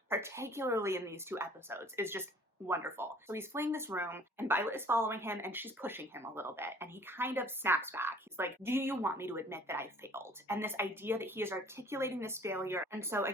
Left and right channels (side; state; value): both; normal; correlation 0.53